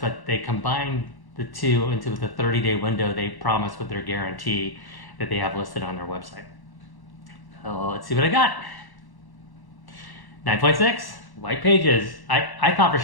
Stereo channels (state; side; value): late; right; 1.1 ms